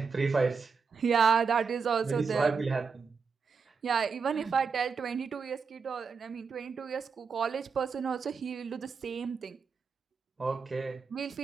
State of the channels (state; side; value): quieter; left; 5.5 dB